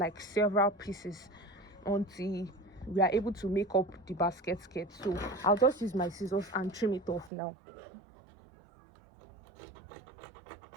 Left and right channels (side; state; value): left; drops out; at 7.3 s